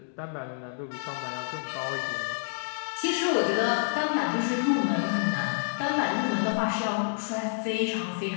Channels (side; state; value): right; silent; digital silence